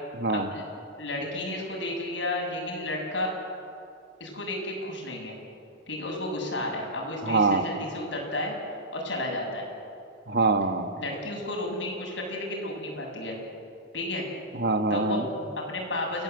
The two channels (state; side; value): normal; both; correlation -0.13